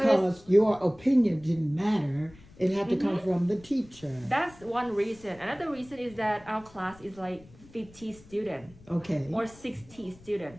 your opinion didn't matter. It had to come from the teacher. That's one reason. Another reason is that our class is like 50 students. Okay. Or 60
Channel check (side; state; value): left; noise; rumble, 23 dB below the sound